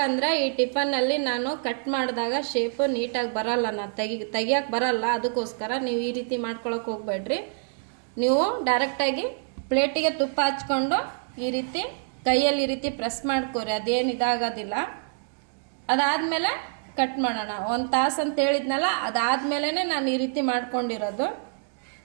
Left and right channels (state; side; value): silent; left; digital silence